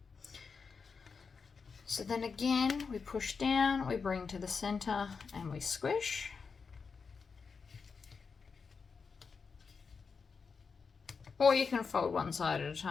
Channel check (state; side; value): quieter; right; 5.3 dB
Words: So then again, we push down, we bring to the center, and we squish. Or you can fold one side at a